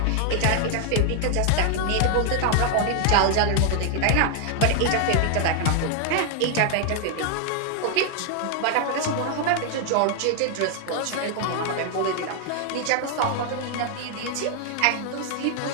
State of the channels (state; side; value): different; both; correlation 0.00